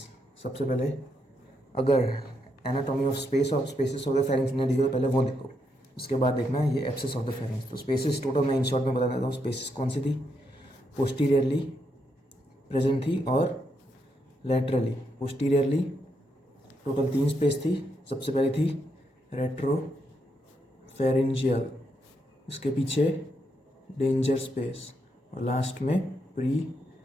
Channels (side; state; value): both; normal; correlation 0.79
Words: सबसे पहले अगर एनाटॉमी ऑफ स्पेस और स्पेसिस ऑफ द फेरिंग्स ने दिखे तो पहले वो देखो, उसके बाद देखना ये एब्सेस ऑफ द फेरिंग्स। तो स्पेसिस टोटल मैं इन शॉर्ट में बता देता हूँ। स्पेसिस कौन सी थी? पोस्टीरियरली प्रेजेंट थी और लैटरली। पोस्टीरियरली टोटल 3 स्पेस थी। सबसे पहले थी रेट्रो फेरिंजियल, उसके पीछे डेंजर स्पेस और लास्ट में प्री